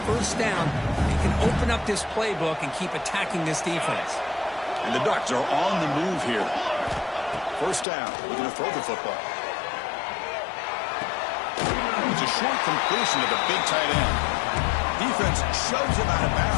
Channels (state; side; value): drops out; right; at 7.9 s